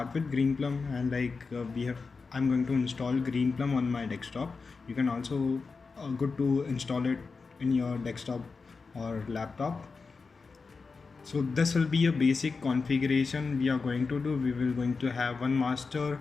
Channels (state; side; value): quieter; right; 4.6 dB